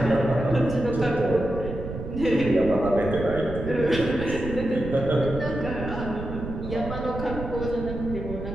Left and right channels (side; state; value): right; noise; rumble, 8 dB below the sound